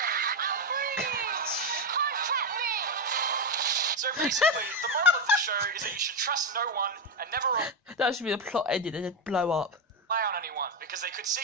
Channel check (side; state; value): both; normal; correlation 0.09